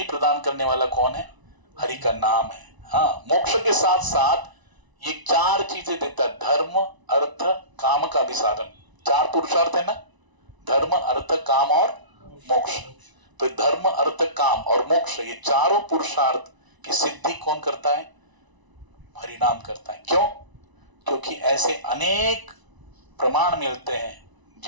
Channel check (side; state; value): left; late; 1.0 ms